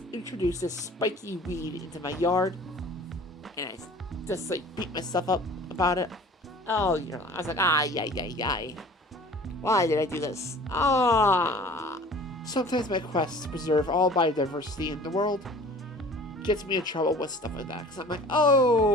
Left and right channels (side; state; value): both; normal; correlation 0.46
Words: this spiky weed into my yard, and I just like beat myself up about it. Oh, I was like, yay. Why did I do this? Sometimes my quest to preserve all biodiversity in the world gets me in trouble with stuff like that. Because I'm like,